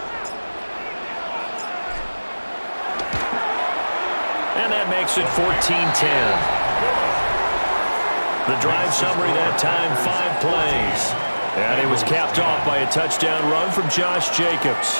And that makes it 14-10. The drive summary that time, 5 plays. And it was capped off by a touchdown run from Josh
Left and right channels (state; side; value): inverted; both; correlation -1.00